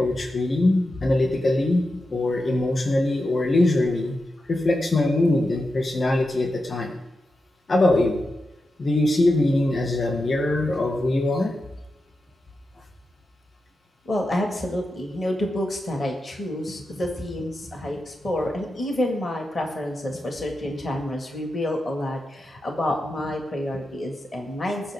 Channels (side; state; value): both; normal; correlation 0.89